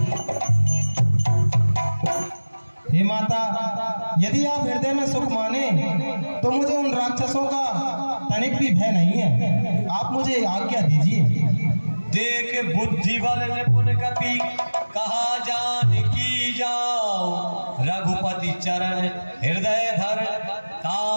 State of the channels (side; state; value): both; inverted; correlation -1.00